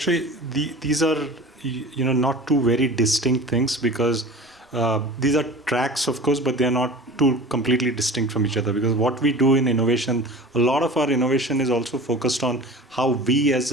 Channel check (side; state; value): both; normal; correlation 0.38